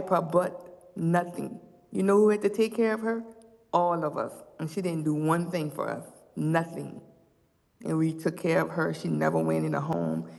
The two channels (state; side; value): identical; both; correlation 1.00